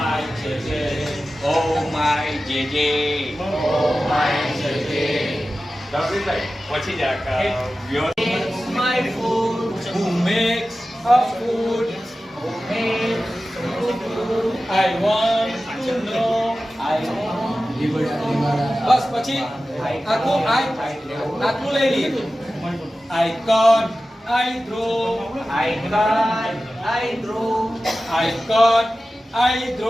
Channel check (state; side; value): normal; both; correlation 0.95